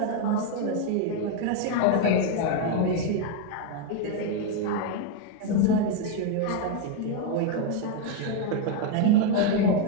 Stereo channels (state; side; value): different; both; correlation 0.01